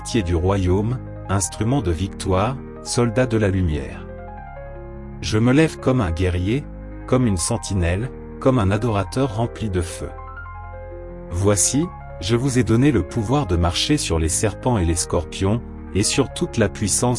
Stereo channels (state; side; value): identical; both; correlation 1.00